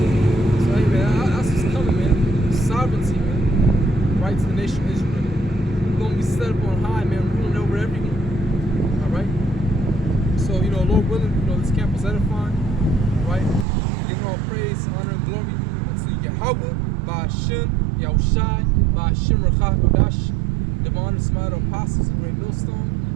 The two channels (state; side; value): drops out; left; at 13.7 s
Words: So, hey, man, that's what's coming, man. Sovereignty, man. Right to the nation of Israel. We're going to be set up on high, man, ruling over everyone. All right? So, Lord willing, this camp was edifying. All right? Giving all praise, honor, and glory unto Yahweh, by Hashem, Yahushai, by Hashem, Rachach, Kodash, divine and smile apostles, a great